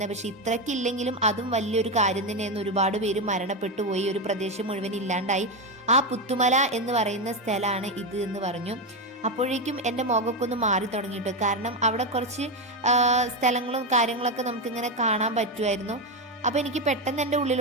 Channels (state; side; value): normal; both; correlation 0.11